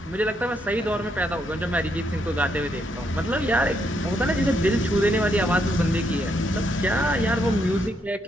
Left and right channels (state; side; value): normal; both; correlation 0.76